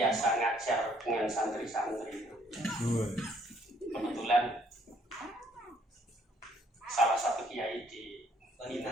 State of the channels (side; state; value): both; normal; correlation 0.65